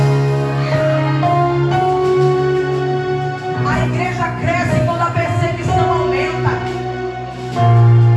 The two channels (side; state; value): both; identical; correlation 1.00